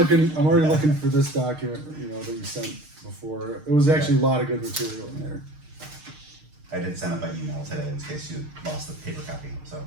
for this document, that you sent before. It was actually a lot of good material in there. I did send it by email today in case you lost the paper copy, so.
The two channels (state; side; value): late; left; 6.5 ms